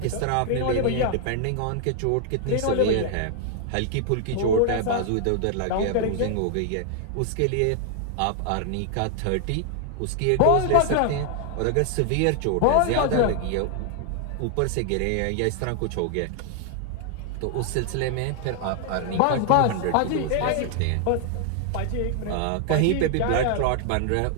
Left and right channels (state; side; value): different; both; correlation 0.00